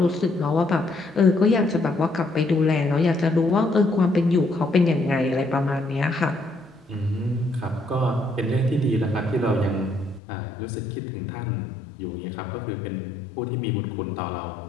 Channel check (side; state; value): right; drops out; at 10.2 s